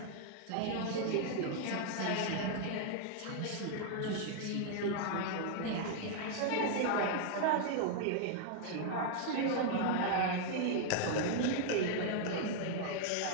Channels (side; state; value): both; different; correlation 0.00